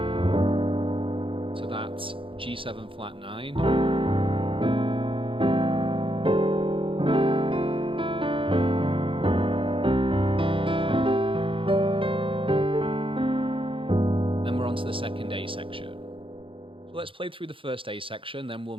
to that G7 flat 9. Onto the second A section. So let's play through the first A section, then we'll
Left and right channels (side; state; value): left; late; 0.25 ms